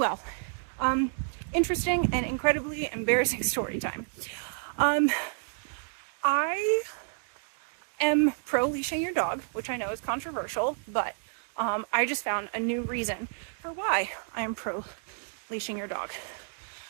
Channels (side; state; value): left; silent; digital silence